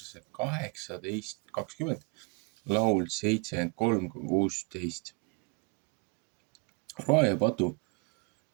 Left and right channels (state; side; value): quieter; left; 31.3 dB